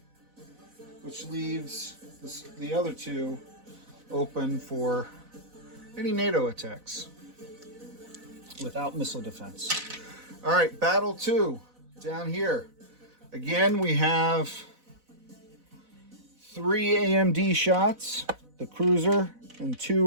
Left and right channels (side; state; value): left; late; 4.0 ms